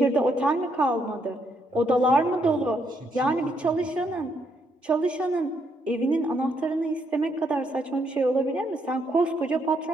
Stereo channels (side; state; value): both; normal; correlation 0.75